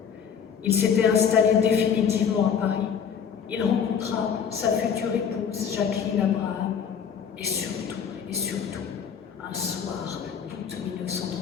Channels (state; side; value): quieter; right; 7.4 dB